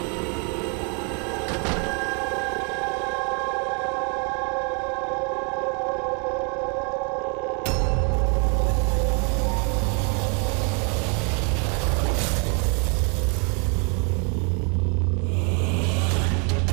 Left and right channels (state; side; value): quieter; left; 36.9 dB